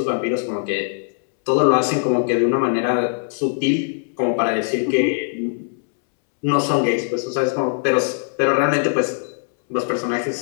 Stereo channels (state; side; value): silent; right; 65 dB below the other